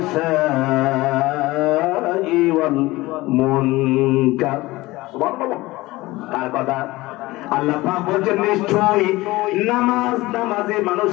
ওয়াল মুনকার। সুবহানাল্লাহ। তার কথা আল্লাহ পাক বলেন নিশ্চয়ই নামাজে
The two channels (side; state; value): right; quieter; 19.7 dB